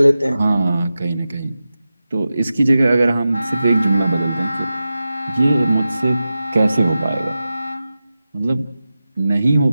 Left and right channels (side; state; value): both; inverted; correlation -0.93